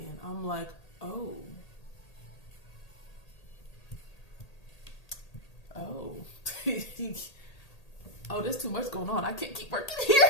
I'm like, oh, oh, there's too much going on. I can't keep working here.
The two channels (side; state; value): right; late; 1.8 ms